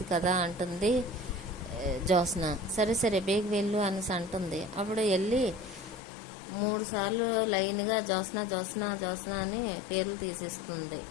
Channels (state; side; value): drops out; right; at 6.0 s